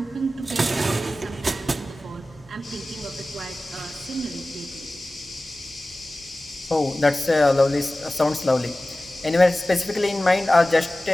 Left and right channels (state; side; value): normal; both; correlation 0.96